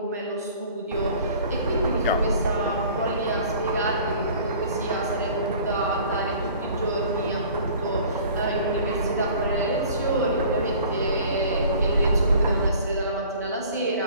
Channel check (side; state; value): both; inverted; correlation -0.48